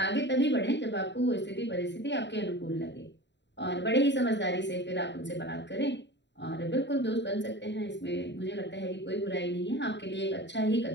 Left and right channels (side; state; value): right; late; 0.52 ms